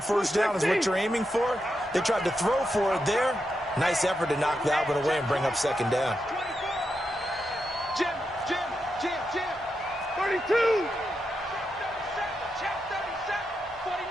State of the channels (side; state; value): both; normal; correlation 0.86